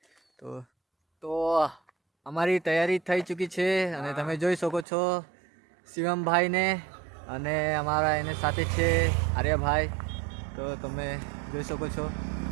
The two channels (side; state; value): left; drops out; at 4.9 s